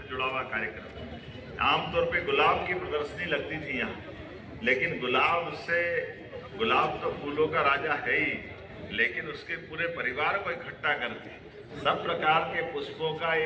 जुड़ा हुआ कार्यक्रम है। आमतौर पे गुलाब की प्रदर्शनी लगती थी यहाँ, लेकिन गुलाब तो फूलों का राजा है ही, लेकिन उसके पूरे परिवार को इकट्ठा करके सब प्रकार के पुष्पों का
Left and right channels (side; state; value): both; identical; correlation 1.00